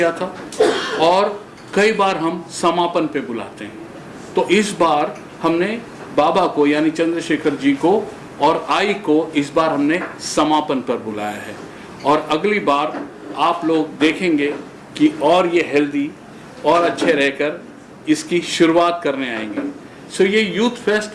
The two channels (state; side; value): identical; both; correlation 1.00